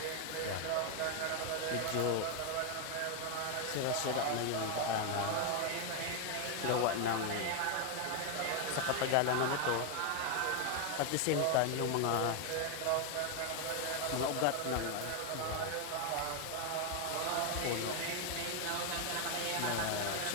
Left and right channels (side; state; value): both; different; correlation 0.01